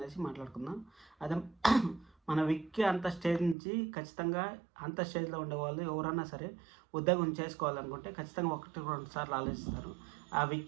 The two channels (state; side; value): drops out; left; at 3.6 s